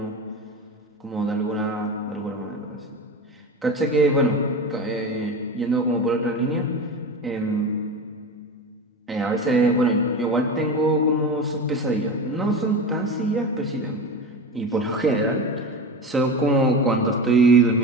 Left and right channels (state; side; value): normal; both; correlation 0.26